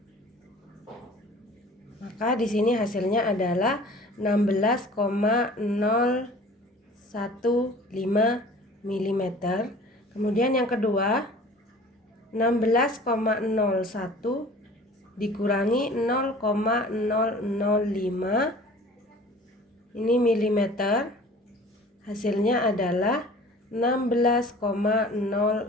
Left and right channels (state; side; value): normal; both; correlation 0.46